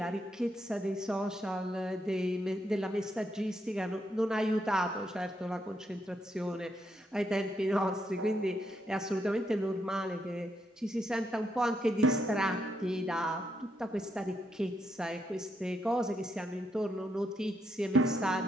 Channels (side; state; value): both; normal; correlation 0.79